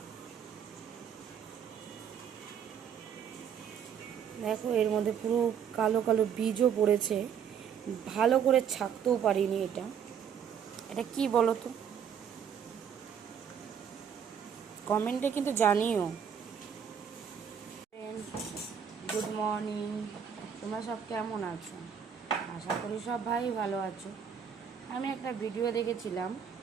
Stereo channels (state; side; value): quieter; left; 7.8 dB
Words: দেখো, এর মধ্যে পুরো কালো কালো বীজও পড়েছে, ভালো করে ছাকতেও পারিনি। এটা এটা কি বলো তো, কমেন্টে কিন্তু জানিও। গুড মর্নিং, তোমরা সব কেমন আছো? আশা করি সব ভাই ভালো আছো। আমি একটা ভিডিও দেখেছিলাম